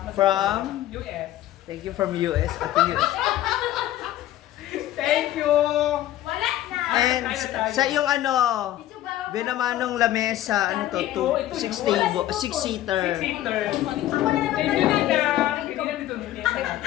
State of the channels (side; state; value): right; quieter; 13.7 dB